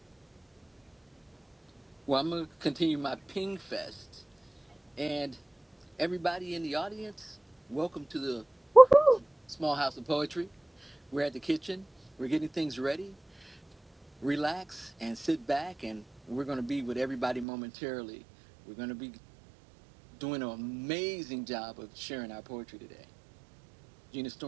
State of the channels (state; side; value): drops out; left; at 17.4 s